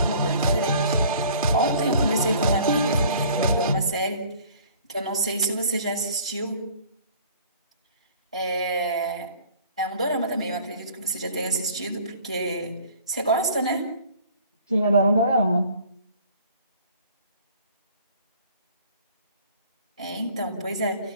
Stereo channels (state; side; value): inverted; both; correlation -0.51